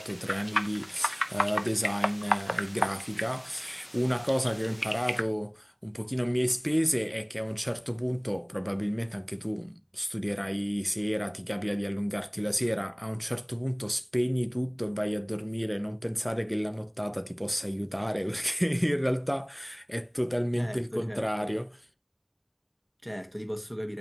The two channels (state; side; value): identical; both; correlation 1.00